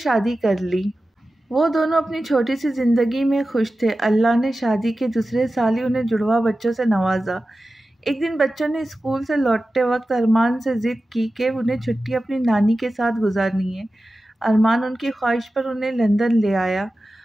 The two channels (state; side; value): normal; both; correlation 0.94